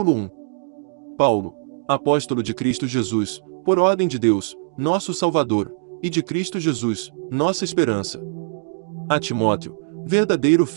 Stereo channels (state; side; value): silent; left; digital silence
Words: 1. Paulo, apóstolo de Cristo Jesus, por ordem de Deus, nosso Salvador, e de Cristo Jesus, nossa esperança. A Timóteo, verdadeiro